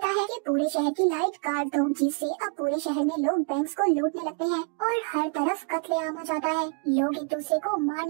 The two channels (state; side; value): quieter; left; 37.3 dB